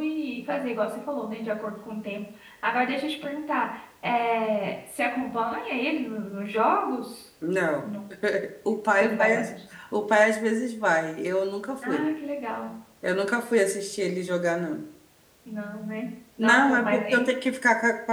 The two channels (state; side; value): identical; both; correlation 1.00